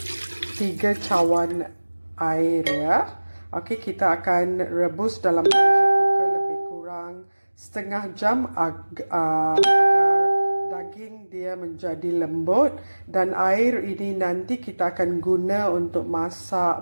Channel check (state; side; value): inverted; both; correlation -1.00